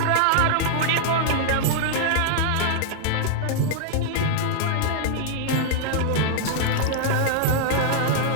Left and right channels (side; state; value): both; different; correlation -0.01